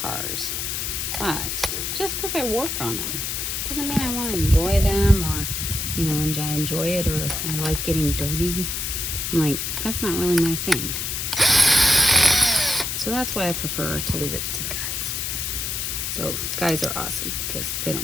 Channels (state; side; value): noise; left; hiss, 2 dB below the sound